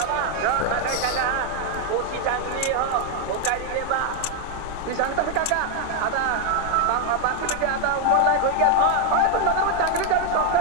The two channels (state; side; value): different; both; correlation 0.01